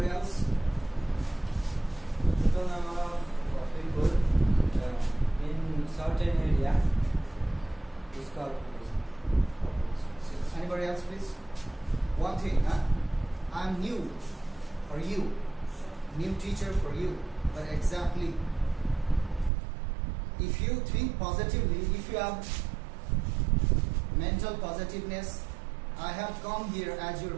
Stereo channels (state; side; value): drops out; left; at 19.5 s